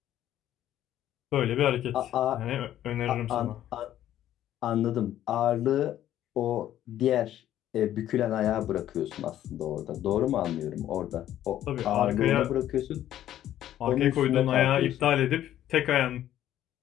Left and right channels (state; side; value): quieter; right; 12.1 dB